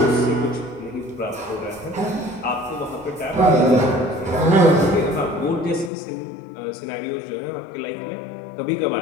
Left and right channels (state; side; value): drops out; right; at 5.9 s